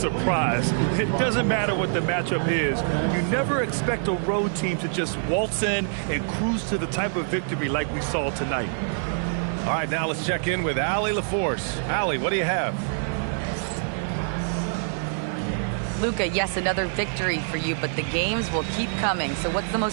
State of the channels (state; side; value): silent; left; digital silence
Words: It doesn't matter what the matchup is. You never expect a road team to just waltz in and cruise to the type of victory like we saw tonight. All right, now let's check in with Allie LaForce. Allie, what do you have? Luka, yes, another victory for you, but the games will keep coming. So what's the